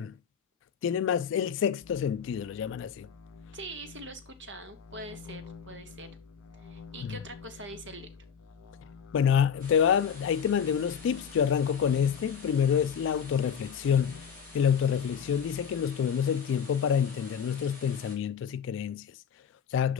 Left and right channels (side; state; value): right; quieter; 7.5 dB